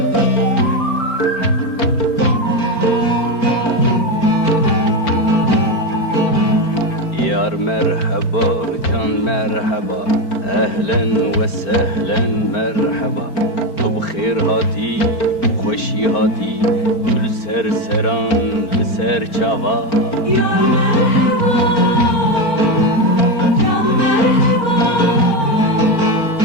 مرحبا جان مرحبا اهلا و سهلا مرحبا تو بخیر هاتی خوشی هاتی گل سر سران لسر چاوا یا مرحبا جان مرحبا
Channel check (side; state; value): right; late; 4.4 ms